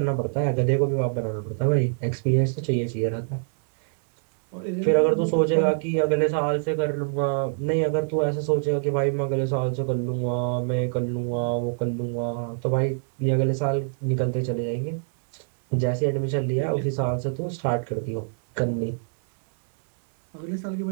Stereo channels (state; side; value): silent; left; 62 dB below the other